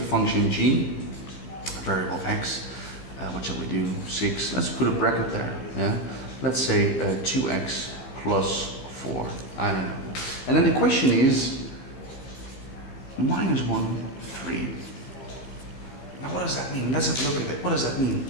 function g, variable x. What shall we do? 6. Let's put a bracket there. Yeah. Let's say 2x plus 4. I don't know. And then the question is minus 1, 3. Now what does that mean? Let's have a look at it. What does that mean?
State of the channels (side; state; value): right; late; 15 ms